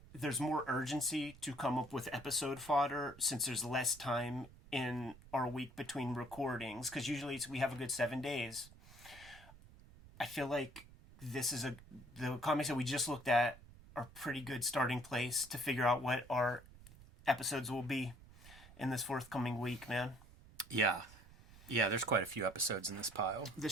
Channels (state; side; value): noise; right; rumble, 20 dB below the sound